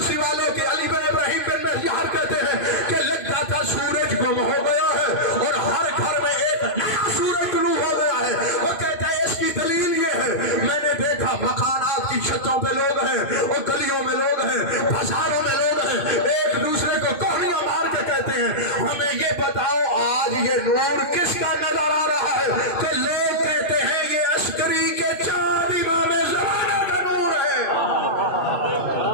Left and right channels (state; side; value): late; right; 2.5 ms